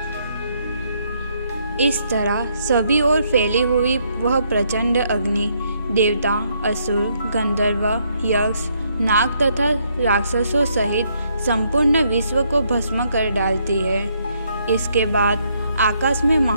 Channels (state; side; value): inverted; both; correlation -0.73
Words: इस तरह सभी ओर फैली हुई वह प्रचंड अग्नि देवता, असुर, गंधर्व, यक्ष, नाग तथा राक्षसों सहित संपूर्ण विश्व को भस्म कर डालती है। इसके बाद आकाश में